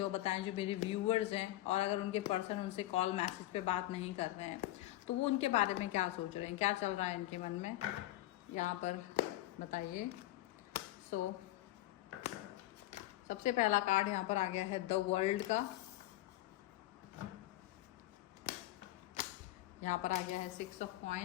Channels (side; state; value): right; quieter; 16.0 dB